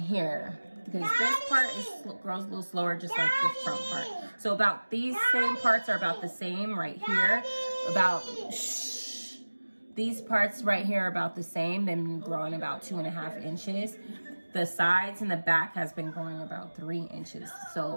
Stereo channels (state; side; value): inverted; both; correlation -1.00